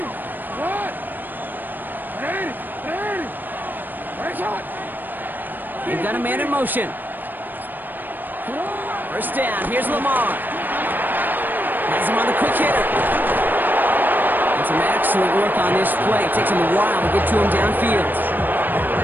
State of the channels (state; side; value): late; left; 0.090 ms